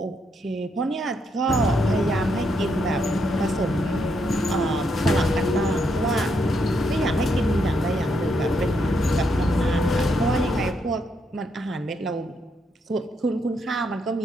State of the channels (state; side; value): normal; both; correlation 0.77